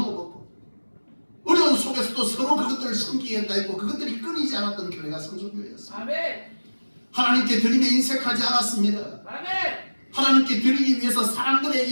먹고 어려운 속에서도 서로 그것들을 섬기겠다 했고 그것들이 끊이지 않았던 교회가 성소교회였습니다. 아멘. 하나님께 드림에 인색하지 않았습니다. 아멘. 하나님께 드리기 위해서 사람들의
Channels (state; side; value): inverted; both; correlation -1.00